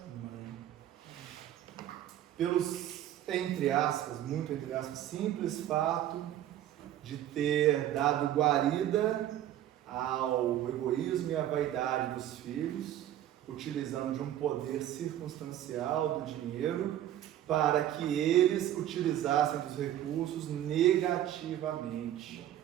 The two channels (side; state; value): left; quieter; 12.1 dB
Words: Pelos, entre aspas, muito entre aspas, simples fato de ter dado guarida ao egoísmo e à vaidade dos filhos, utilizando de um poder circunstancial do dinheiro, para que eles utilizassem dos recursos negativamente,